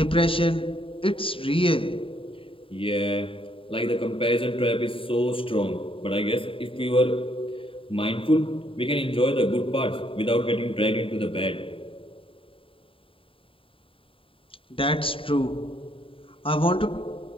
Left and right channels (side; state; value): right; late; 0.26 ms